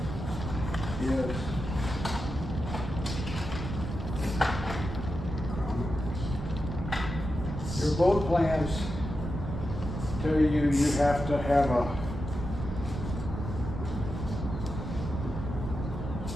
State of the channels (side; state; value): right; noise; rumble, 5 dB below the sound